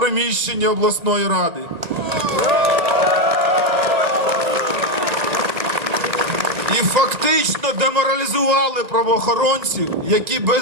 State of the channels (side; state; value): left; late; 1.8 ms